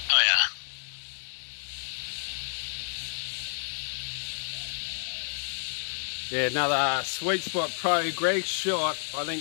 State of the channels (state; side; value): silent; right; digital silence